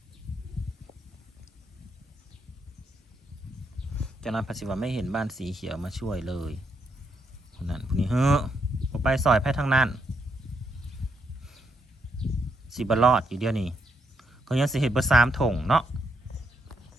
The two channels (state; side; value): normal; both; correlation 0.78